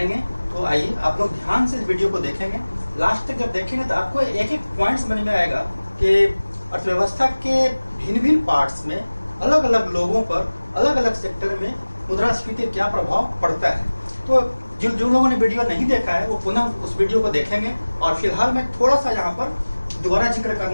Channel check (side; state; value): both; inverted; correlation -1.00